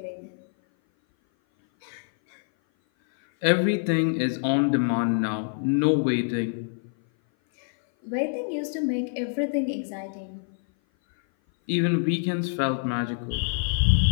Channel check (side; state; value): right; silent; 57 dB below the other